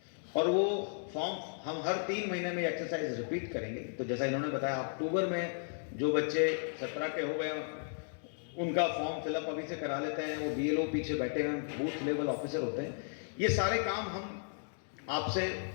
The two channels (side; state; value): right; silent; digital silence